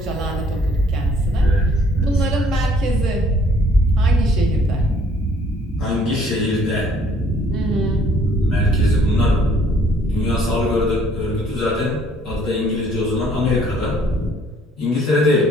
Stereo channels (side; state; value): both; normal; correlation 0.61